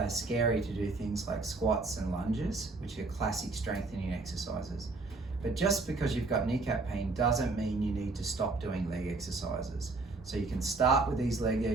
to do things like squats and lunges, which are classic strengthening exercises. But just because you've got kneecap pain doesn't mean you need to stop doing leg exercises. So you can start with these leg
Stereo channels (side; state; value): left; quieter; 3.6 dB